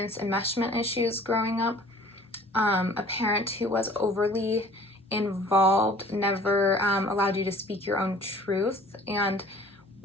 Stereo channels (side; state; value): both; normal; correlation 0.50